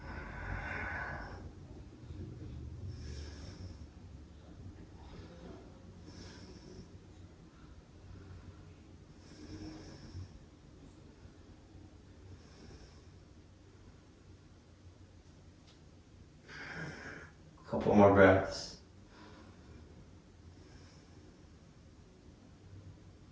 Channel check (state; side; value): identical; both; correlation 1.00